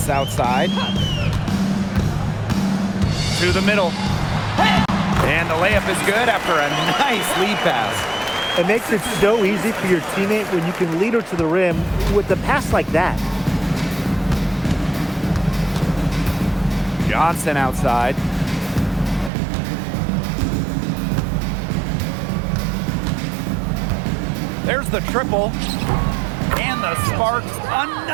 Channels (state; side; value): drops out; left; at 19.3 s